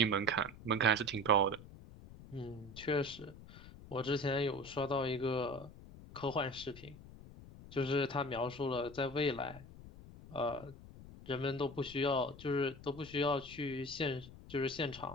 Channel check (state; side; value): noise; left; rumble, 17 dB below the sound